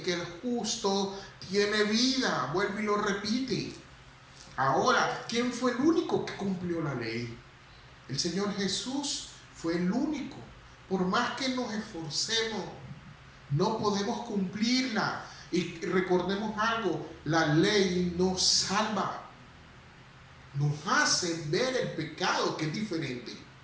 que el justo tiene vida. Vuelve y lo repite. Ahora, ¿quién fue el único que cumplió la ley? El Señor Jesús fue el único. Por más que nos esforcemos, no podemos cumplirla. Y recordemos algo, la ley nos salva. Nos hace ver el pecado, que es diferente.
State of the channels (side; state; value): both; identical; correlation 1.00